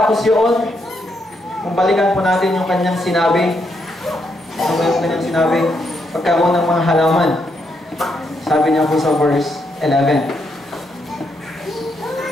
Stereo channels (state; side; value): normal; both; correlation 0.78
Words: yun, kung balikan po natin yung kanyang sinabi, pagkaroon ng mga halaman. Sabi niya po sa verse 11.